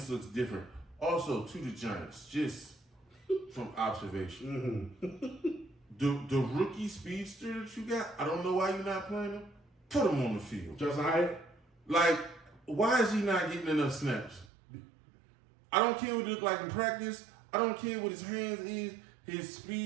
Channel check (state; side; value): drops out; left; at 14.5 s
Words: looks different. Also, to the Giants, just from observation. The rookie speedster that you got, I don't know why you're not playing him. Put him on the field. Justin Hyatt? Like, why is he not getting enough snaps? I don't care what he look like in practice. I don't care what his hands is. His